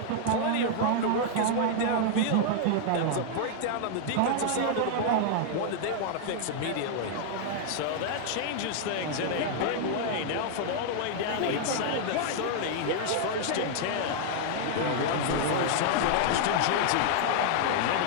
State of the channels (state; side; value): different; both; correlation -0.01